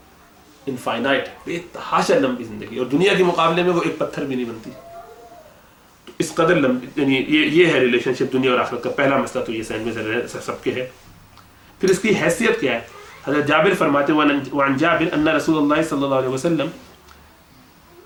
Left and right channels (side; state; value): both; identical; correlation 1.00